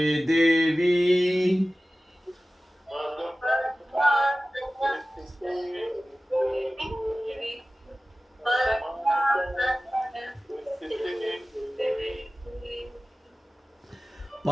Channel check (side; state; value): both; normal; correlation 0.96